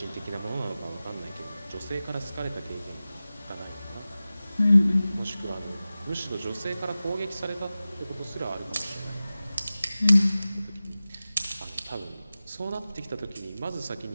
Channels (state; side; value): inverted; both; correlation -0.96